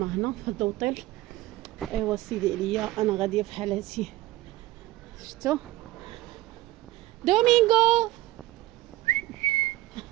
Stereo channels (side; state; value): left; quieter; 17.4 dB